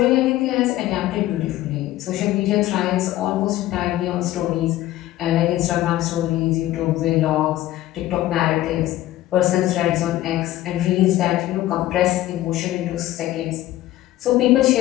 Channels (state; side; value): quieter; right; 15.1 dB